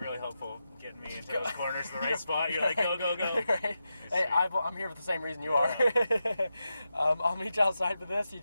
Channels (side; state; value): both; inverted; correlation -0.89